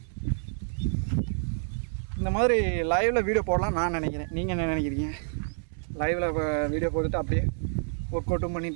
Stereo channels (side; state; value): left; silent; 59 dB below the other